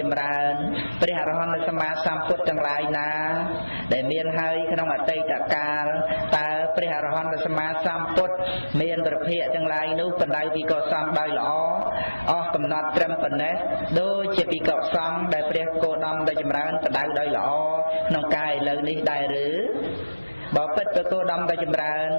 ចម្រើនព្រះអរហន្តសម្មាសម្ពុទ្ធទាំងឡាយណាដែលមានហើយក្នុងអតីតកាលតើព្រះអរហន្តសម្មាសម្ពុទ្ធមានប្រភពទាំងឡាយនោះបដៅភិក្ខុសង្ឃដោយល្អអស់កំណត់ត្រឹមប៉ុណ្ណេះដូចជាភិក្ខុសង្ឃដែលព្រះគោដមដែលចម្រើនបដៅដោយល្អក្នុងកាយឥឡូវនេះដែរឬបបិទ្ធព្រះគោដមដែលចម្រើន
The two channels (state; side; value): inverted; both; correlation -1.00